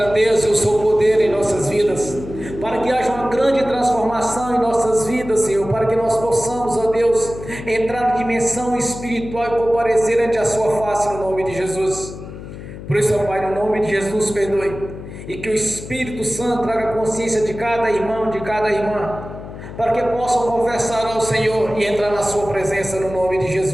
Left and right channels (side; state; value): left; noise; hum, 12 dB below the sound